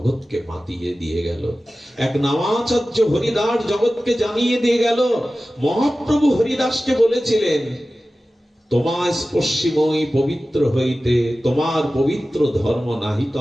মাতিয়ে দিয়ে গেল। এক নামাচার্য হরিদাস জগৎকে জানিয়ে দিয়ে গেল। মহাপ্রভু হরিদাসকে বলেছিলেন, তোমার স্পর্শিময়ী পবিত্র হইতে তোমার পবিত্র ধর্ম নাহি তো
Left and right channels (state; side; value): normal; both; correlation 0.95